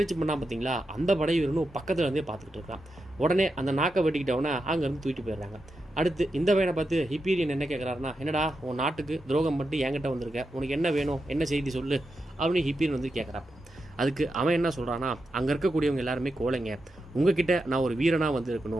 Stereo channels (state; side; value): normal; both; correlation 0.87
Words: பண்ணால் பார்த்தீங்களா, அந்த படை வீரனும் பக்கத்தில் இருந்தே பார்த்துக்கிட்டு இருக்கான். உடனே அந்த நாக்கை வெட்டிக்கிட்டவனை அங்கேருந்து தூக்கிட்டு போயிடுறாங்க. அடுத்து இந்த பையனை பார்த்து ஹிப்பீரியன் என்ன கேட்குறாருன்னா, என்னடா உன் நாட்டுக்கு துரோகம் பண்ணிட்டு என்கிட்ட வந்திருக்க, உனக்கு என்ன வேணும், என்ன செய்தி சொல்லு அப்படின்னு ஹிப்பீரியன் வந்து கேட்குறாப்ப. அதுக்கு அவன் என்ன சொல்கிறான்னா, அங்கே இருக்கக்கூடியவங்க எல்லாருமே கோழைங்க, உங்ககிட்ட நான் ஒரு வீரனாக வந்து